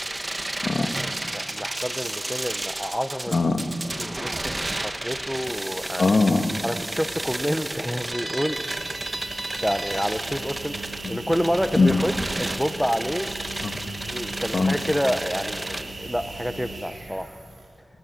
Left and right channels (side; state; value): both; normal; correlation 0.97